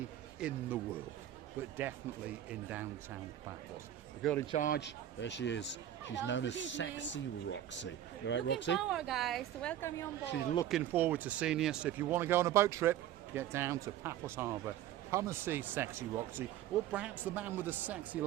in the world, but definitely in downtown Paphos. The girl in charge, there she is. She's known as Sexy Roxy. You right, Roxy? Power, guys, to welcome you on board. She's looking forward to seeing you. So if you want to go on a boat trip, get down to Paphos Harbour. Come and see Sexy Roxy, or perhaps the man with the sexy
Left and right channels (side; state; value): left; quieter; 11.7 dB